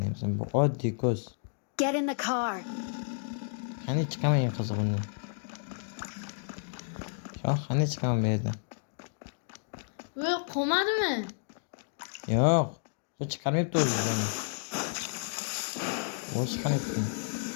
bu oddiy ko'z. Get in the car. Qani chiqaman qizig'ini. Shoh, qani chiqaman bu yerdan. Voy, qolmadimi? Yo'q. Bu chiqarmayapti o'zini. Bu chiqarmayapti.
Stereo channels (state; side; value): silent; right; digital silence